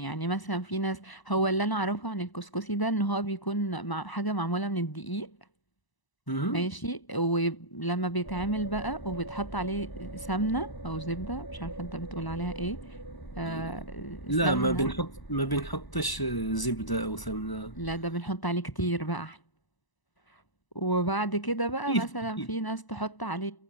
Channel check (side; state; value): right; late; 1.0 ms